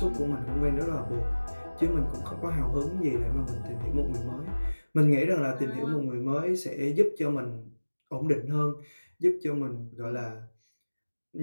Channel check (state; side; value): inverted; both; correlation -1.00